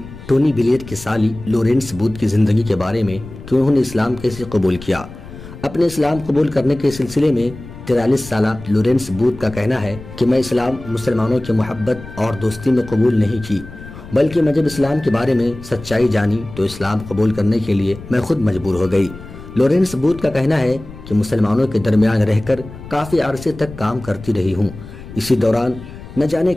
ٹونی بلیئر کی سالی لورنس بوتھ کی زندگی کے بارے میں کہ انہوں نے اسلام کیسے قبول کیا۔ اپنے اسلام قبول کرنے کے سلسلے میں 43 سالہ لورنس بوتھ کا کہنا ہے کہ میں اسلام مسلمانوں کی محبت اور دوستی میں قبول نہیں کی، بلکہ میں جب اسلام کے بارے میں سچائی جانی تو اسلام قبول کرنے کے لیے میں خود مجبور ہو گئی۔ لورنس بوتھ کا کہنا ہے کہ مسلمانوں کے درمیان رہ کر کافی عرصے تک کام کرتی رہی ہوں، اسی دوران نہ جانے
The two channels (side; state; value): left; noise; rumble, 15 dB below the sound